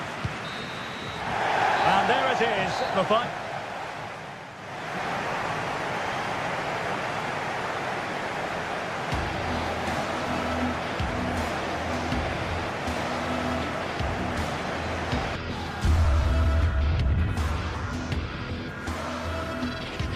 And there it is, the fight.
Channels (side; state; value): both; identical; correlation 1.00